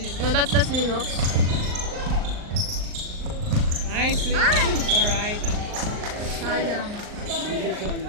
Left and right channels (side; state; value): left; late; 39 ms